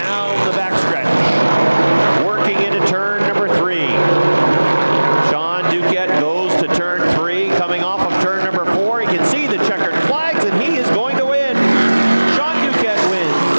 the backstretch. Working into turn number 3. Sean Duquette goes to turn 3, coming off of turn number 4. He can see the checkered flags, and he is going to win. Sean Duquette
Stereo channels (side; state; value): both; inverted; correlation -1.00